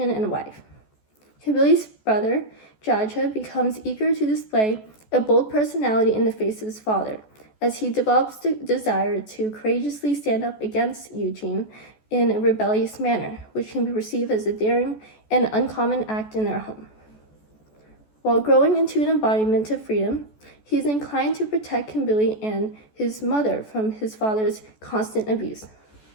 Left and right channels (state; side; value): late; right; 14 ms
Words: and wife. Kimberly's brother, Jaja, becomes eager to display a bold personality in the face of his father, as he develops the desire to courageously stand up against Eugene in a rebellious manner, which can be perceived as a daring and uncommon act in their home. While growing into an embodiment of freedom, he is inclined to protect Kimberly and his mother from his father's constant abuse.